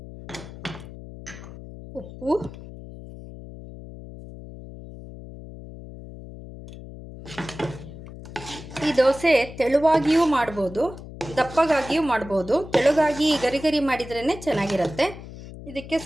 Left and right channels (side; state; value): left; noise; hum, 14 dB below the sound